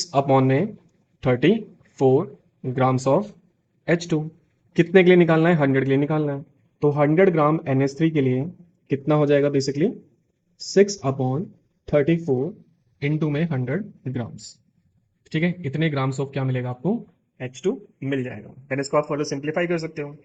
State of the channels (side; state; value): both; identical; correlation 1.00